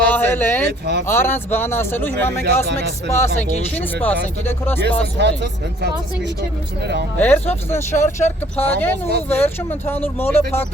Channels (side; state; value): both; normal; correlation 0.58